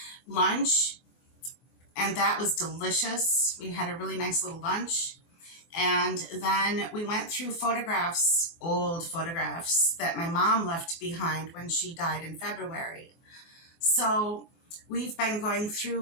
lunch, and that was delicious. We had a really nice little lunch. And then we went through photographs, old photographs that my mom left behind when she died in February. So we've been going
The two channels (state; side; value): late; right; 24 ms